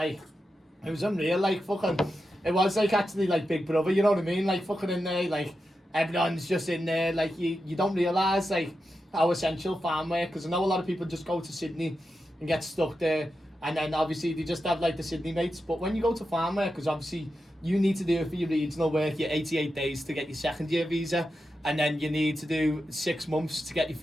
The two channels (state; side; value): normal; both; correlation 0.89